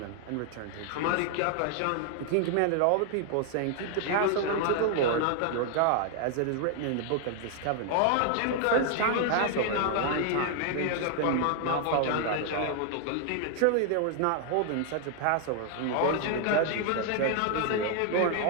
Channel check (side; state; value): both; different; correlation 0.00